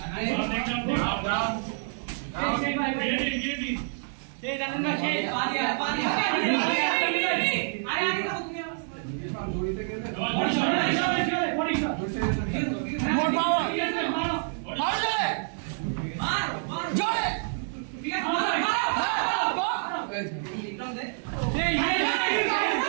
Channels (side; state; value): left; silent; digital silence